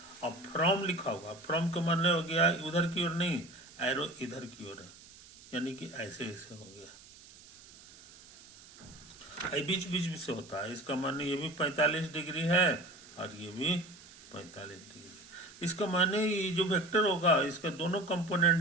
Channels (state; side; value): noise; right; hiss, 21 dB below the sound